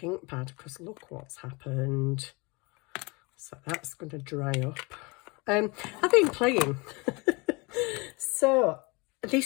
ink pad because look what's happened. So that's going to dry up. I've been playing. So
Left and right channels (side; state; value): right; quieter; 27.6 dB